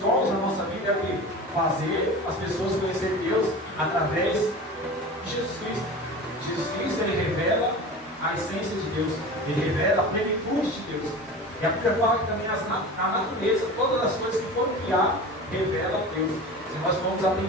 na nossa vida é o quê? Fazer as pessoas conhecerem Deus através de Jesus Cristo. Jesus Cristo, ele revela a essência de Deus. Ele revela a plenitude de Deus. E a Bíblia fala que também a natureza, todas as coisas que foram criadas, revelam a Deus. Se nós vamos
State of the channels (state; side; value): normal; both; correlation 0.33